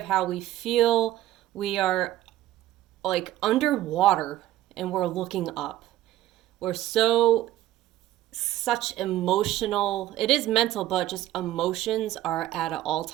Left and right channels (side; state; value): left; quieter; 14.2 dB